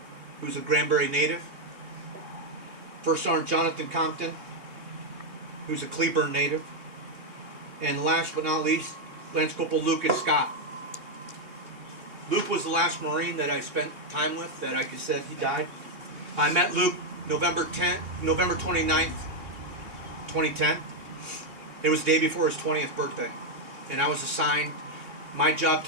who's a Granbury native, First Sergeant Jonathan Compton, who's a Cleburne native, and last but not least, Lance Corporal Lucas Scott. Luke was the last Marine that I spent time with that I could said he died. I met Luke November 29th, 2010. It was the day before his 20th birthday, and I was assigned. My job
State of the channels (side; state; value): left; late; 2.8 ms